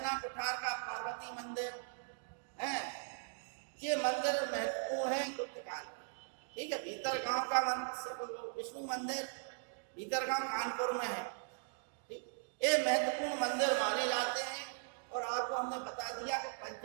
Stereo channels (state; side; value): silent; left; digital silence